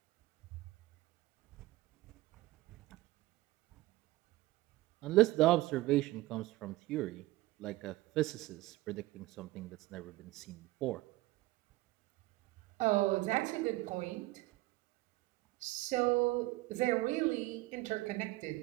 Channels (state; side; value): quieter; left; 18.5 dB